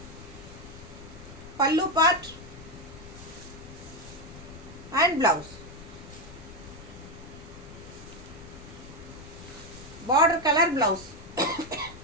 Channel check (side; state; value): left; noise; rumble, 16 dB below the sound